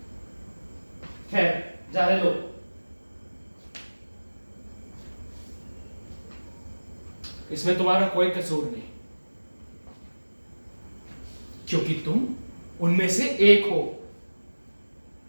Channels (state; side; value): inverted; both; correlation -1.00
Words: खैर, जाने दो। इसमें तुम्हारा कोई कसूर नहीं, क्योंकि तुम उनमें से एक हो।